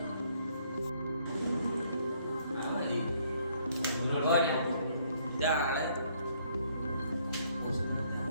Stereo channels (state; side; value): inverted; both; correlation -0.67